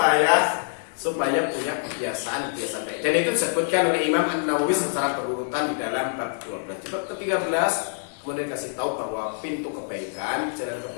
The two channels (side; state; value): right; silent; 61 dB below the other